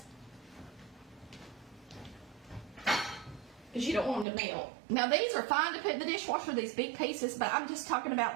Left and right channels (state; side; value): drops out; left; at 4.2 s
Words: Because you don't want them to melt. Now these are fine to put in the dishwasher, these big pieces, but I'm just talking